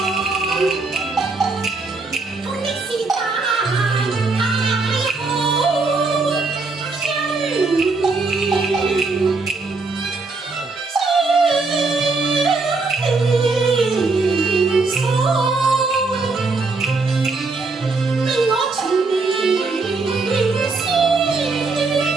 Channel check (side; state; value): left; quieter; 3.9 dB